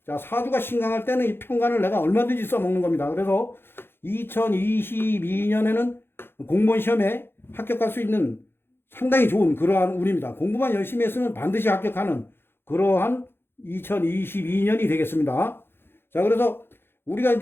자, 사주가 신강할 때는 이 편관을 내가 얼마든지 써먹는 겁니다. 그래서 2022년에는 공무원 시험에 합격할 수 있는 상당히 좋은 그러한 운입니다. 공부만 열심히 했으면 반드시 합격하는 그러한 2022년이 되겠습니다. 자, 그래서 우리가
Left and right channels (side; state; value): right; late; 0.11 ms